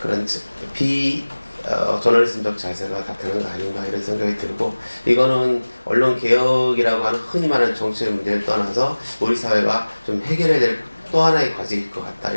그런 저널리즘적 자세가 나타나는 거 아닌가 이런 생각이 들고, 이거는 언론 개혁이라고 하는 흔히 말하는 정치의 문제를 떠나서 우리 사회가 좀 해결해야 될 또 하나의 과제일 것 같다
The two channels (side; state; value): both; inverted; correlation -1.00